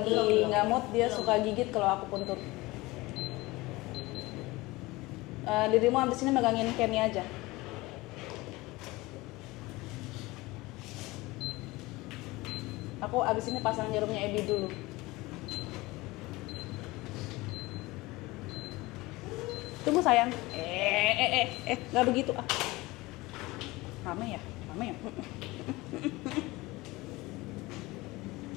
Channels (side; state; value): right; quieter; 21.1 dB